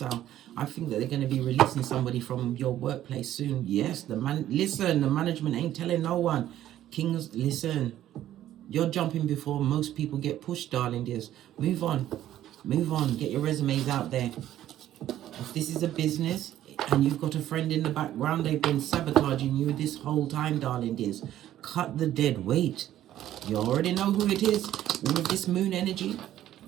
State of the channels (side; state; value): left; quieter; 12.5 dB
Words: I think that they're going to be releasing somebody from your workplace soon. Yes, the management ain't telling no one. Kings, listen. You're jumping before most people get pushed, darling dears. Move on. Move on. Get your resumes out there. If this is a business and you've got a friend in the background, they've been sabotaging you this whole time, darling dears. Cut the dead weight. You already know who it is with this moon energy.